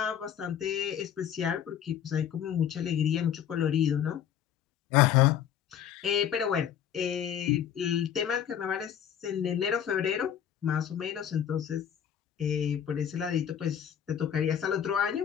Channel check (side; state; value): right; quieter; 9.3 dB